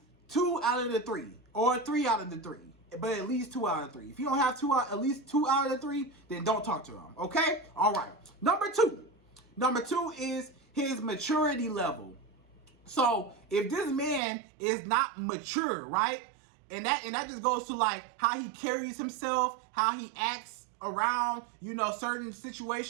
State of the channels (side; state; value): left; drops out; at 14.2 s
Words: 2 out of the 3, or 3 out of the 3, but at least 2 out of 3. If you don't have at least 2 out of the 3, then don't talk to him. Okay? All right. Number two is his maturity level. So if this man is not mature, right, and that just goes to like how he carries himself, how he acts around, you know, certain